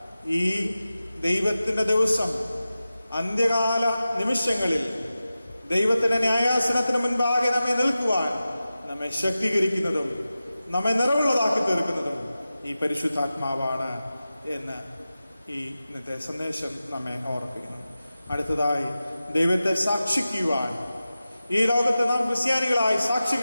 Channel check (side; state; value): both; inverted; correlation -0.94